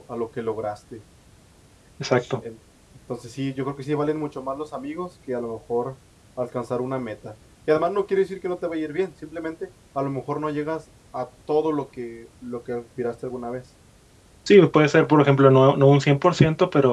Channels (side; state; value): both; identical; correlation 1.00